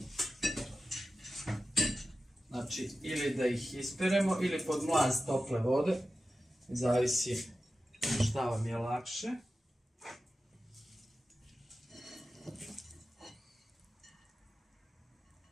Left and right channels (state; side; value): normal; both; correlation 0.94